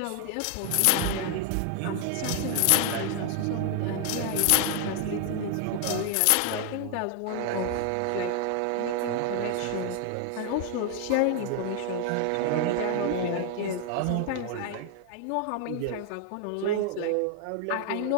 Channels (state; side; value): different; both; correlation 0.00